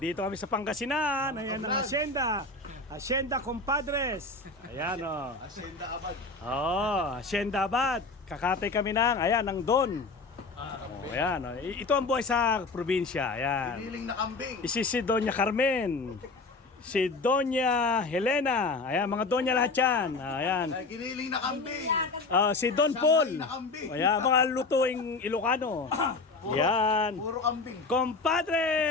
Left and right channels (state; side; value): quieter; right; 3.6 dB